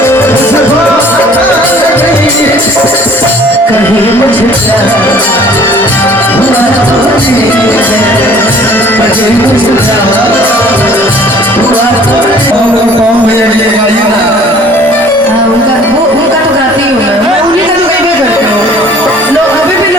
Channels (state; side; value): normal; both; correlation 0.52